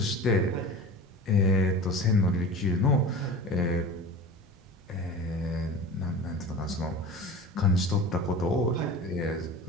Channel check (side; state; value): both; normal; correlation 0.34